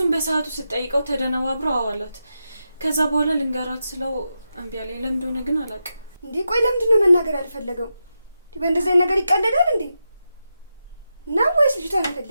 በሰዓቱ ስጠይቀው ተደነባብሮ አዋላት። ከዛ በኋላ ልንገራት ስለው እምቢ አለኝ። ለምን እንደሆነ ግን አላውቅም። እንዴ ቆይ ለምንድን ነው መናገር ያልፈለገው? በእንደዚህ አይነት ነገር ይቀለዳል እንዴ? ነው ወይስ ልጅቷን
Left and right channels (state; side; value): inverted; both; correlation -0.88